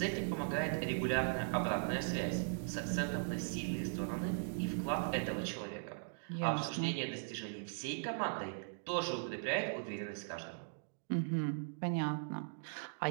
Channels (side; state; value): left; silent; digital silence